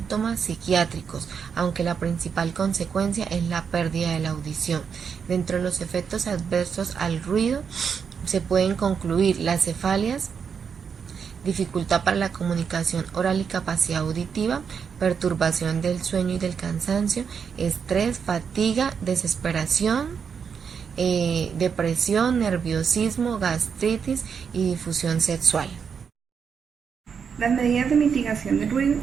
psiquiátricos, aunque la principal consecuencia es la pérdida de la audición. Dentro de los efectos adversos al ruido se pueden concluir las cefalias, dificultad para la comunicación oral y capacidad auditiva, perturbación del sueño y del cansancio, estrés, fatiga, desesperación, depresión, nerviosismo, gastritis y difusión sexual. Las medidas de mitigación del ruido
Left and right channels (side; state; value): left; quieter; 6.6 dB